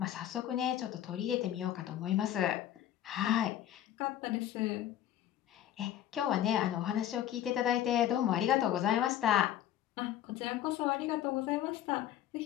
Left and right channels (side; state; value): right; quieter; 11.7 dB